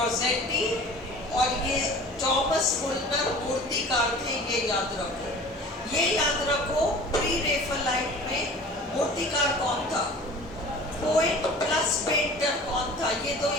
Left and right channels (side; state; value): both; normal; correlation 0.43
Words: और ये थॉमस मुल्नर मूर्तिकार थे। ये याद रखो, ये याद रखो। प्री रेफलाइट में मूर्तिकार कौन था? पोएट प्लस पेंटर कौन था? ये 2